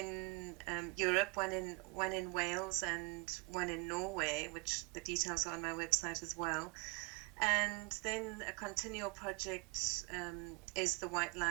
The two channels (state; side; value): quieter; left; 28.2 dB